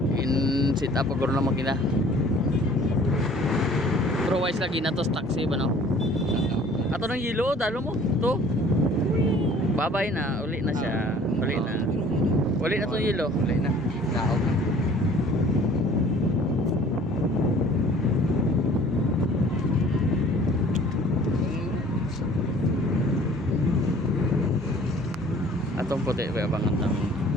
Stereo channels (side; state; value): both; normal; correlation 0.51